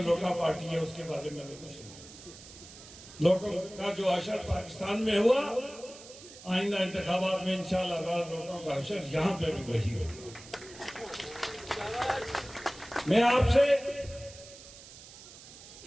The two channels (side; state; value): right; noise; hiss, 17 dB below the sound